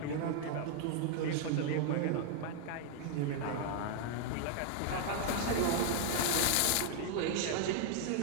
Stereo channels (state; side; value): different; both; correlation 0.00